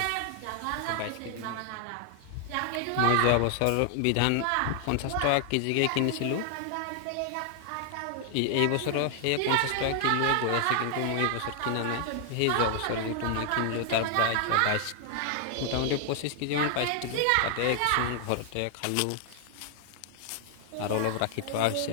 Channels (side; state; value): both; different; correlation 0.00